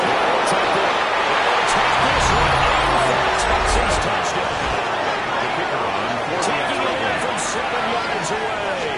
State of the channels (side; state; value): both; identical; correlation 1.00